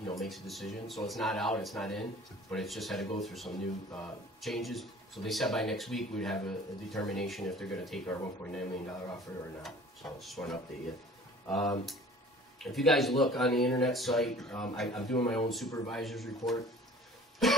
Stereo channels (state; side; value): normal; both; correlation 0.47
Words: know, makes a decision. So it's not out, it's not in, but it's just had to go through some new changes. So they said by next week we'd have a determination if they're going to take our $1.9 million offer or not. So I just want to update you. If you guys look on the internet site, I'm doing my own supervisor's report.